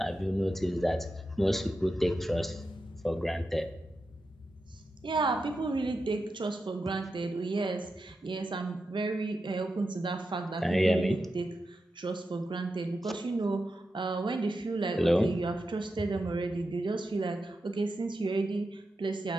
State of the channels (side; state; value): both; normal; correlation 0.89